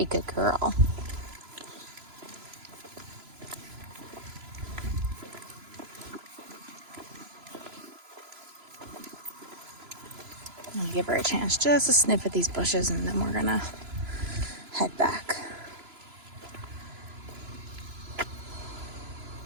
good girl. I'll give her a chance just to sniff at these bushes and then we're gonna head back.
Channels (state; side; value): late; left; 3.0 ms